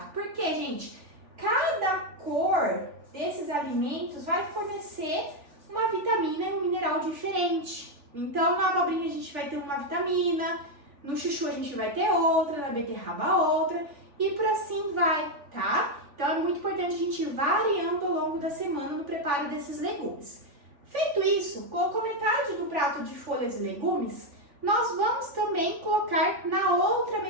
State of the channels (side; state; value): left; late; 3.4 ms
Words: Por quê, gente? Cada cor desses alimentos vai fornecer uma vitamina e um mineral diferente. Então na abobrinha a gente vai ter uma vitamina, no chuchu a gente vai ter outra, na beterraba outra e por assim vai, tá? Então é muito importante a gente ir variando ao longo da semana no preparo desses legumes. Feito isso, colocou metade do prato de folhas e legumes, nós vamos também colocar na outra